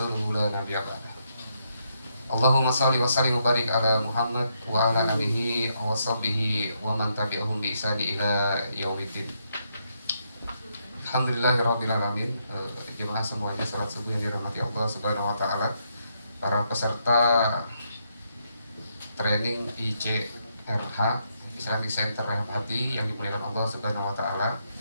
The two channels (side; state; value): both; inverted; correlation -0.78